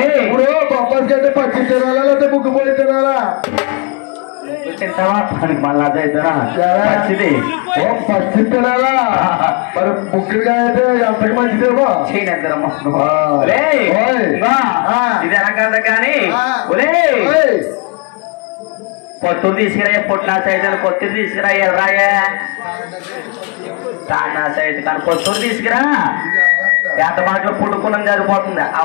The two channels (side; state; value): right; quieter; 31.2 dB